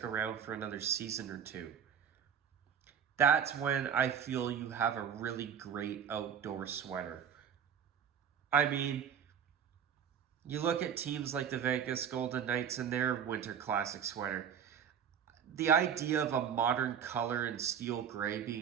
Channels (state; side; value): quieter; left; 8.2 dB